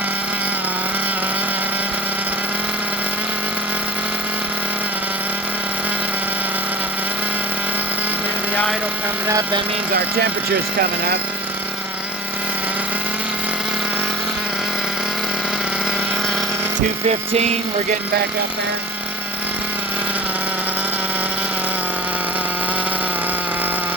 Idle coming up, that means our temperature's coming up. $215, we're getting back up there.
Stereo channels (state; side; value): normal; both; correlation 0.39